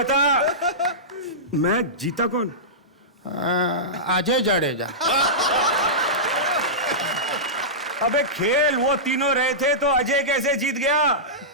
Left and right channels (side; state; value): both; normal; correlation -0.16